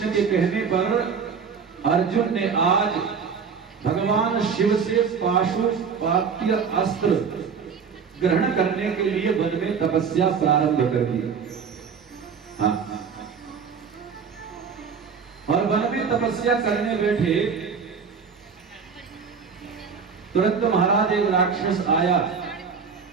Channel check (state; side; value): quieter; left; 6.1 dB